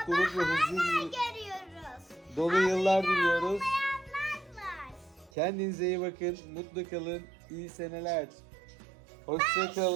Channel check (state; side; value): drops out; left; at 5.3 s